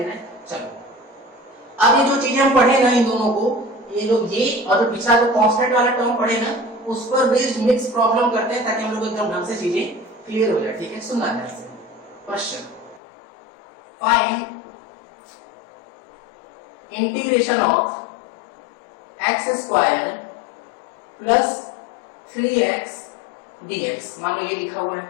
है। चलो अब ये जो चीजें हम पढ़े ना इन दोनों को, ये जो ये और जो पिछला जो कांस्टेंट वाला टर्म पढ़े ना, उस पर बेस्ड मिक्स प्रॉब्लम करते हैं ताकि हम लोग एकदम ढंग से चीजें क्लियर हो जाए। ठीक है, सुनना ध्यान से। Question, find integration of x square plus 3x dx। मान लो ये लिखा हुआ है।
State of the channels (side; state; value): right; drops out; at 13.0 s